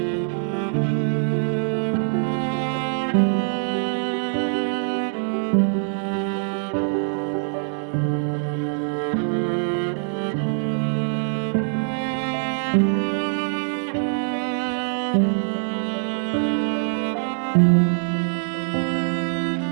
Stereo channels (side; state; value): left; silent; 63 dB below the other